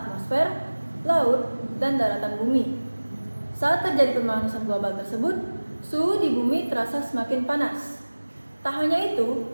laut, dan daratan bumi. Saat terjadi pemanasan global tersebut, suhu di bumi terasa semakin panas. Tak hanya itu,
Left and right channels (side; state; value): both; inverted; correlation -1.00